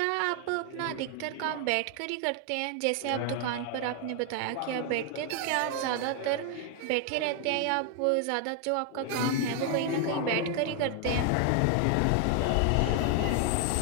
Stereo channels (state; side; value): different; both; correlation 0.00